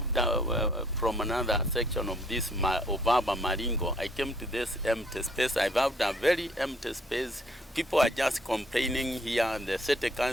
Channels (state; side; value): normal; both; correlation 0.63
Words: from another section of this Obaba Maringo, I came to this empty space. I found a very empty space. People are just complaining here. The city